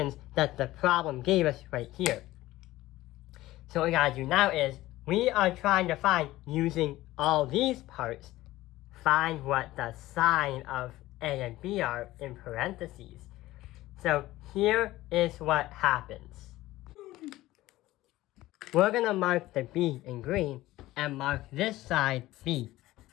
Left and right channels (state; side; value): quieter; right; 16.8 dB